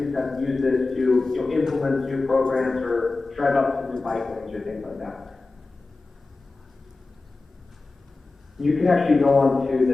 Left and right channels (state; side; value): quieter; right; 3.5 dB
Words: have used this to implement new programs or drive up some new bike lanes or things like that. You can actually go on to